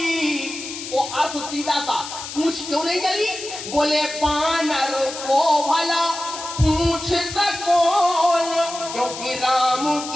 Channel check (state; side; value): noise; left; hiss, 9 dB below the sound